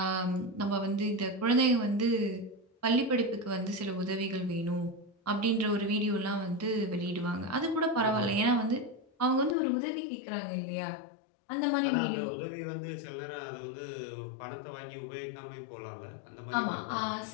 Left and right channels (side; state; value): right; drops out; at 9.6 s